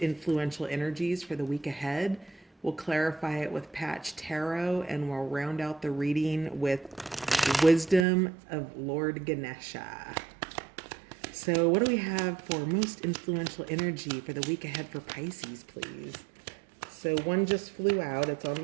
energies for the week ahead. We'll clarify it with Patch Tarot, and we'll round out the reading with Wisdom of Lord Ganesha. So what do we have for most influential energy for the week ahead for Pisces, please? So one just flew out. It's on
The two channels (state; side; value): drops out; left; at 8.1 s